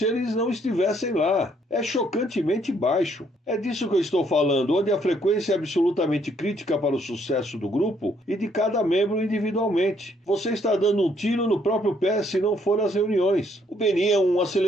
eles não estivessem lá. É chocantemente baixo. É disso que eu estou falando, onde a frequência é absolutamente crítica para o sucesso do grupo e de cada membro individualmente. Você está dando um tiro no próprio pé se não for às reuniões. O BNI é um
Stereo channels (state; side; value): normal; both; correlation 0.68